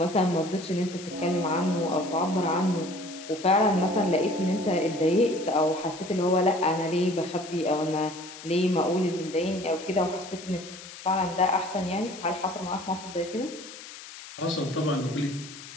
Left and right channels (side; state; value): left; noise; hiss, 15 dB below the sound